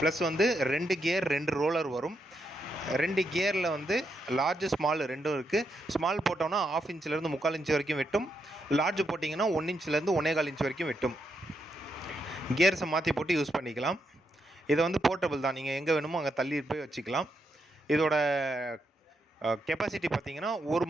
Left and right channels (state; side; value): normal; both; correlation 0.81